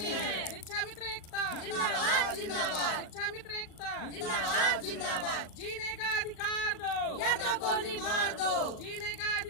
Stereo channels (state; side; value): late; right; 38 ms